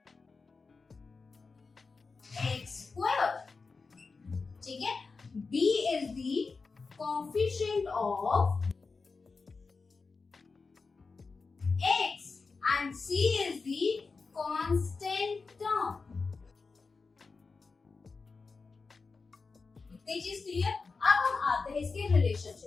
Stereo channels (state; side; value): quieter; right; 4.4 dB